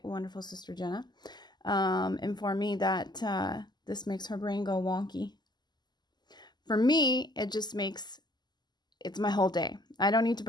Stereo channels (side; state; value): right; late; 0.21 ms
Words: wonderful sister Jenna, informed me that this makes her brain go wonky. For me, it just makes, it's my whole day. I don't need to